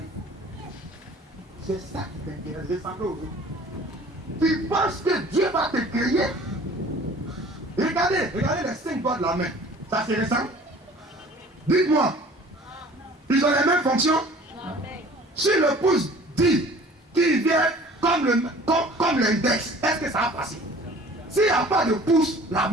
C'est ça qui t'intéresse, ressembler aux autres. Tu penses que Dieu va te créer? Regardez les 5 doigts de la main. Ça se ressemble? Dites-moi. Ils ont les mêmes fonctions? Si le pouce dit qu'il vient comme l'index, est-ce que ça va passer? S'il n'y a pas de pouce, la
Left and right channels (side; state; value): both; normal; correlation 0.48